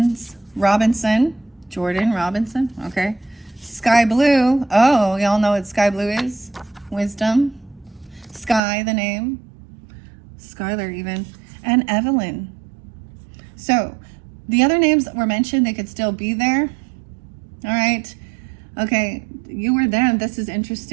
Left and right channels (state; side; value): drops out; left; at 8.6 s